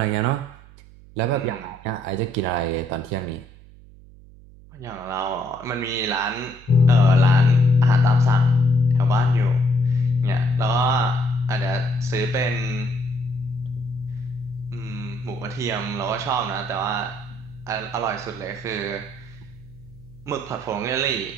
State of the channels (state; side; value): noise; right; hum, 22 dB below the sound